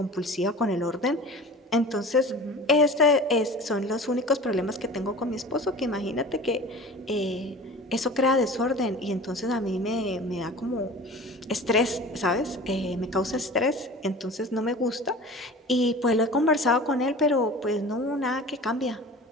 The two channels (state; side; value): normal; both; correlation 0.38